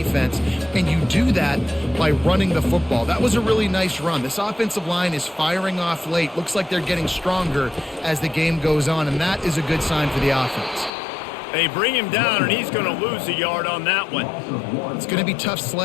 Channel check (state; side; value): drops out; right; at 10.9 s